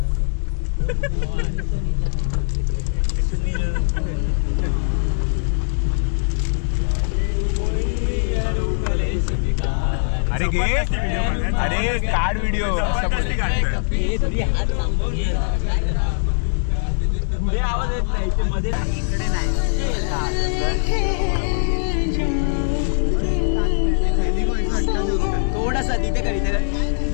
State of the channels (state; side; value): silent; right; 65 dB below the other